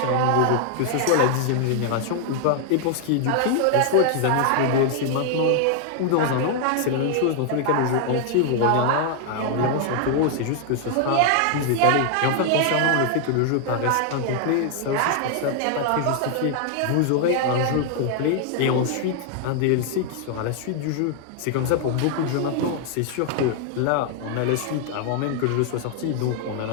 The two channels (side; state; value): both; different; correlation 0.00